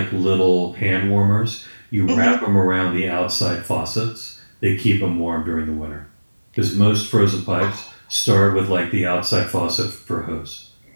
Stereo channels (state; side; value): inverted; both; correlation -1.00